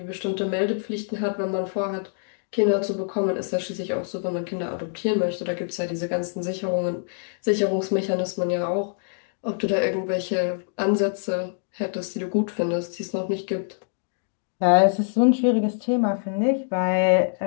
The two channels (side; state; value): right; silent; digital silence